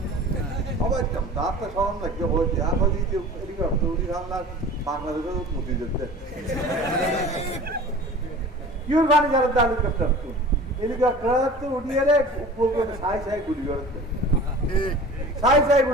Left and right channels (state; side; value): normal; both; correlation 0.41